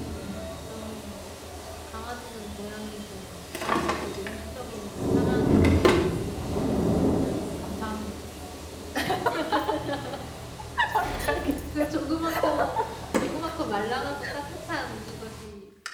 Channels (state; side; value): identical; both; correlation 1.00